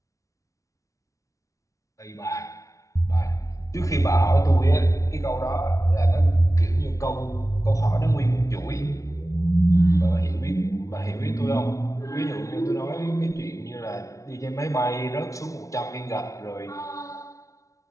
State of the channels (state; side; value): late; right; 0.16 ms